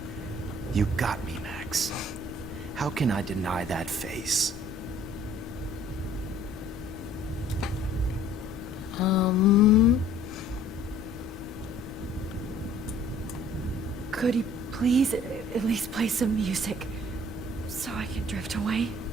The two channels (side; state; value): both; normal; correlation 0.55